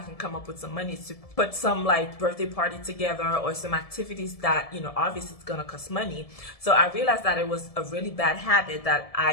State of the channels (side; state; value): right; late; 1.7 ms